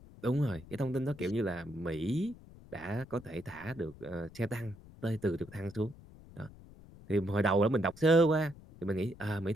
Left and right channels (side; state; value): left; noise; rumble, 20 dB below the sound